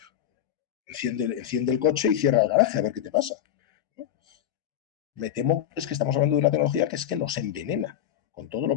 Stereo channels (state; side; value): quieter; right; 10.7 dB